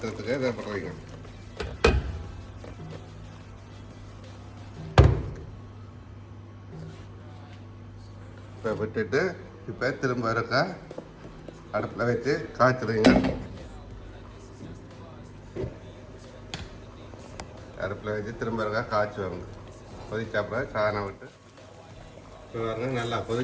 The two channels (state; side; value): identical; both; correlation 1.00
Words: இதை போடுறீங்க. இப்போ விட்டுட்டு இப்போ திரும்ப இருக்கா அடுப்பில் வச்சு காய்ச்சிடுங்க. அடுப்பில் வச்சு திரும்ப இருக்கா காய்ச்சுவாங்க. கொதிச்சாப்புல சாணம் விட்டு இப்போ பாருங்க நல்லா